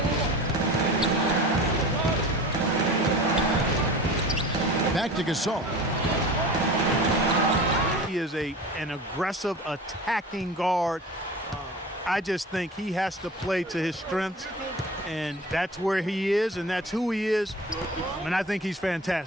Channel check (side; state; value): both; normal; correlation 0.37